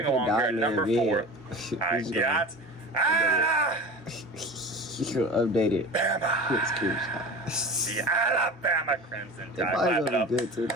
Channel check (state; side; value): normal; both; correlation 0.34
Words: along here at number 4, I got... You update it. The Alabama Crimson Tide. Clap it up. Good too.